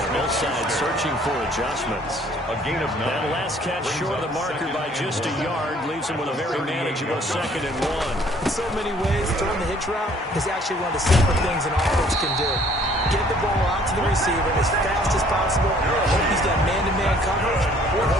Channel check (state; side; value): normal; both; correlation 0.58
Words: Both sides searching for adjustments. A gain of 9. That last catch short of the marker by just a yard leaves him with a very manageable 2nd and 1. In so many ways, throwing the hitch route is actually one of the simple things an offense can do. Get the ball out to the receiver as fast as possible. Hope he's got man-to-man coverage, or